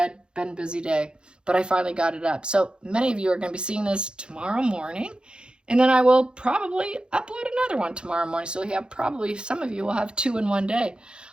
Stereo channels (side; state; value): left; late; 0.051 ms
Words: Been a busy day, but I finally got it up. So many of you are going to be seeing this tomorrow morning. And then I will probably upload another one tomorrow morning. So we have probably, some of you will have 2 in one day.